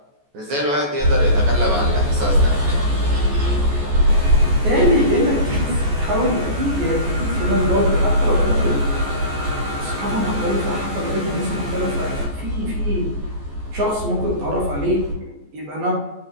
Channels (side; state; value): left; late; 14 ms